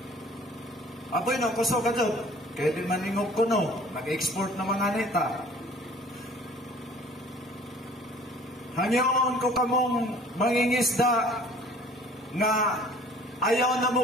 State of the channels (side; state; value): both; normal; correlation 0.51